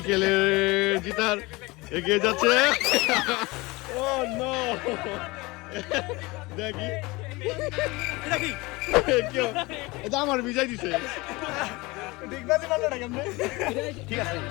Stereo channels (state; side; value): quieter; right; 23.2 dB